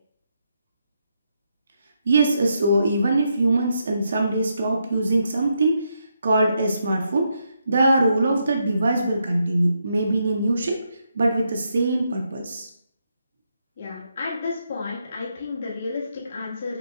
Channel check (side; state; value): both; inverted; correlation -0.80